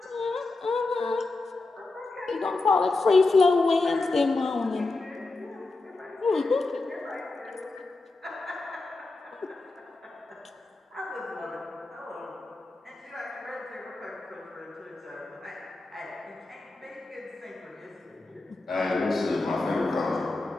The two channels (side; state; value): right; quieter; 3.3 dB